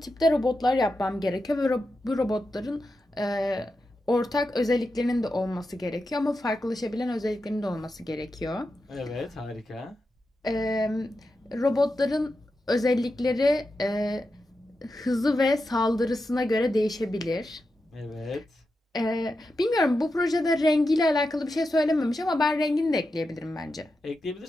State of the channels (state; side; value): normal; both; correlation 0.89